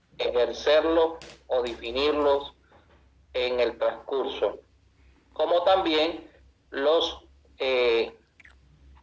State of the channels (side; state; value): both; identical; correlation 1.00